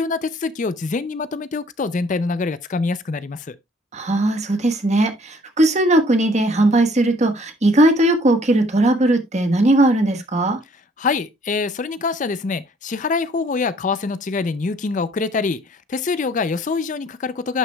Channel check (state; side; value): normal; both; correlation 0.59